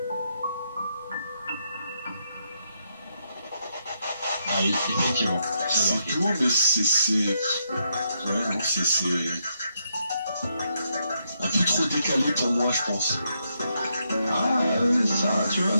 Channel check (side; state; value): both; inverted; correlation -0.79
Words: Ah oui, effectivement. C'est tout, mais c'est. Ouais, non, c'est. Un peu trop décalé pour moi, je pense. Ah, ça, tu vois,